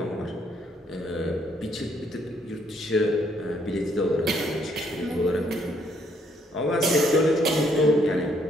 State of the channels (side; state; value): both; normal; correlation 0.69